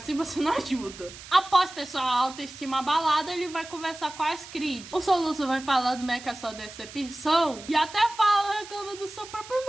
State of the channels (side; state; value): right; noise; hiss, 15 dB below the sound